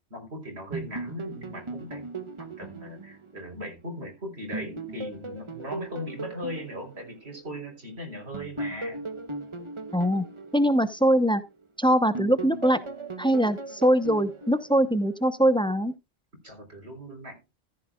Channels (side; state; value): both; normal; correlation 0.67